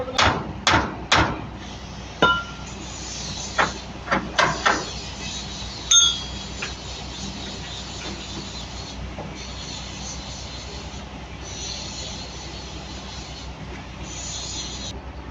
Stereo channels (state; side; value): identical; both; correlation 1.00